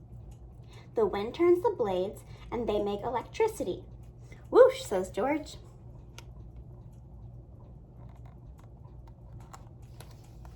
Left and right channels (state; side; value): identical; both; correlation 1.00